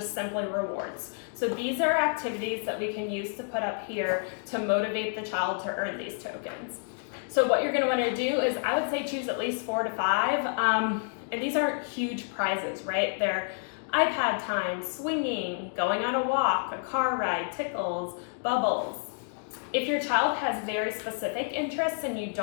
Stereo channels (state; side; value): silent; right; 58 dB below the other